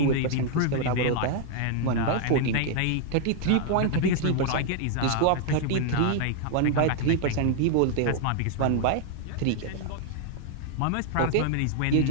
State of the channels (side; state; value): both; different; correlation 0.00